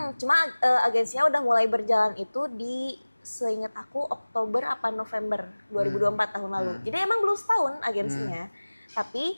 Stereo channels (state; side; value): inverted; both; correlation -1.00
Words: Cuma agensinya udah mulai berjalan itu di, seingat aku, Oktober apa November 2024 tahun lalu. Jadi emang belum setahun agensinya.